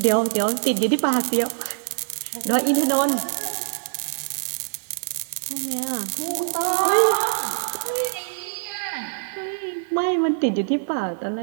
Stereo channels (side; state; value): left; silent; digital silence